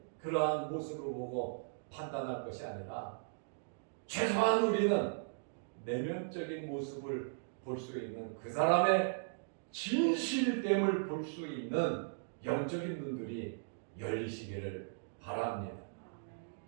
그러한 모습을 보고 판단할 것이 아니라, 최소한 우리는 내면적인 모습을 볼 수 있는, 그 사람의 진실됨을 볼 수 있는 영적인 눈들이 열리시기를 바랍니다.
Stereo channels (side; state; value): left; silent; digital silence